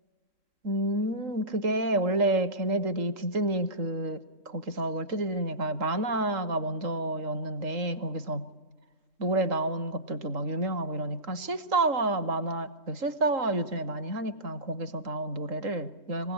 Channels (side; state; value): left; late; 3.8 ms